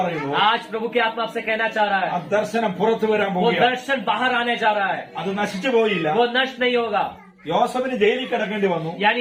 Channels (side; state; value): both; identical; correlation 1.00